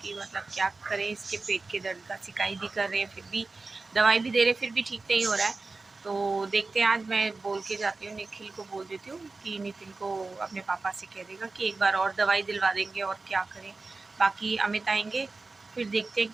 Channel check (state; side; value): quieter; left; 3.7 dB